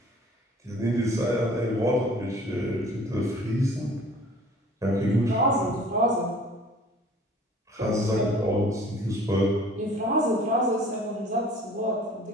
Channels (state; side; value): normal; both; correlation 0.50